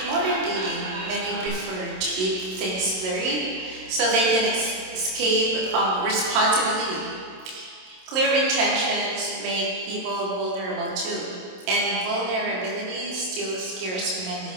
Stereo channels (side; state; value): left; late; 27 ms